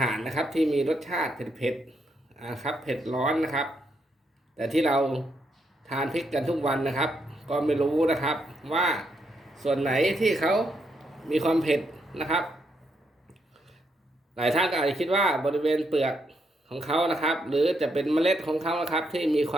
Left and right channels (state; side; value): normal; both; correlation 0.78